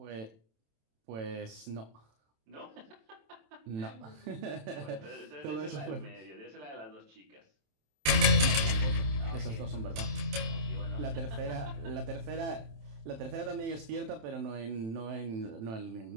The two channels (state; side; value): late; left; 27 ms